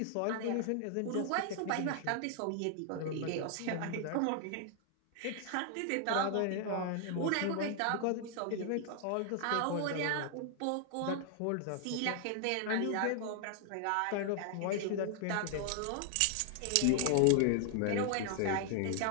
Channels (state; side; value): different; both; correlation 0.00